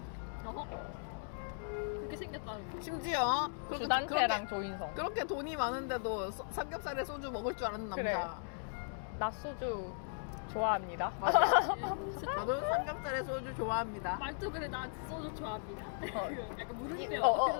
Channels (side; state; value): right; silent; digital silence